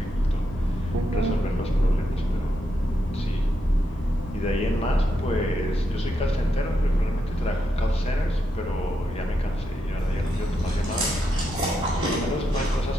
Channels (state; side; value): normal; both; correlation 0.83